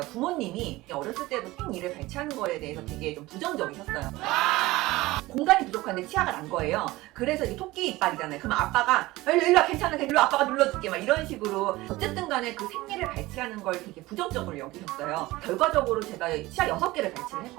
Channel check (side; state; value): left; quieter; 19.2 dB